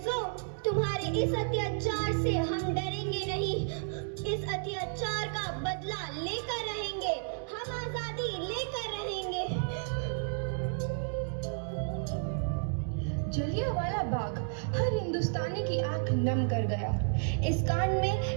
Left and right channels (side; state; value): left; silent; digital silence